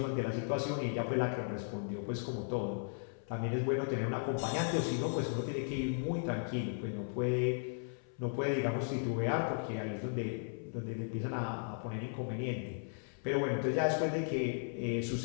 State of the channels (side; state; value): right; silent; 54 dB below the other